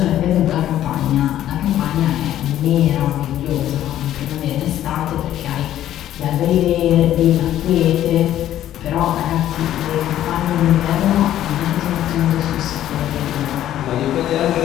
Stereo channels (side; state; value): right; quieter; 12.2 dB